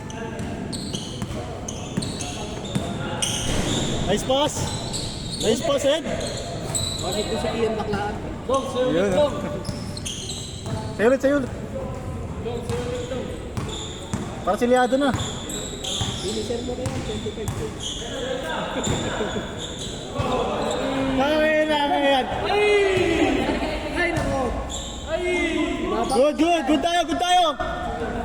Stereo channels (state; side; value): identical; both; correlation 1.00